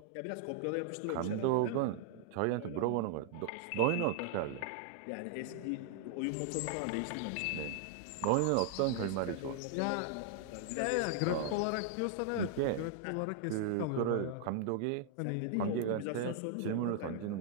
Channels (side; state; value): both; different; correlation -0.01